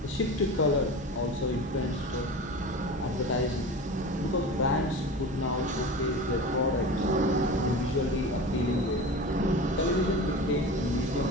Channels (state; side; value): normal; both; correlation 0.32